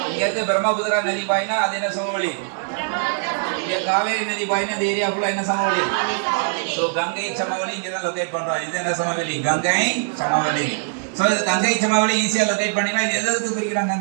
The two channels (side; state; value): left; silent; digital silence